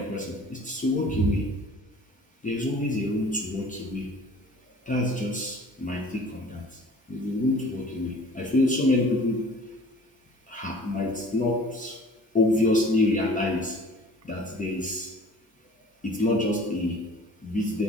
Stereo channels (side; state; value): both; normal; correlation 0.48